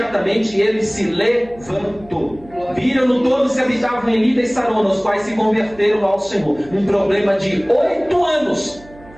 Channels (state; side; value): noise; right; hum, 22 dB below the sound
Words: ele se levantou. Viram-no todos que habitavam em Lida e Sarona, os quais se converteram ao Senhor. Um problema de 8 anos,